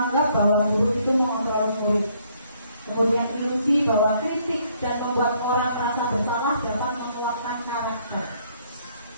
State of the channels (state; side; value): inverted; both; correlation -0.67